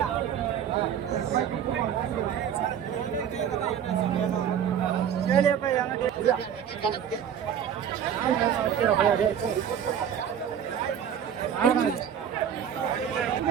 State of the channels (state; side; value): quieter; left; 8.8 dB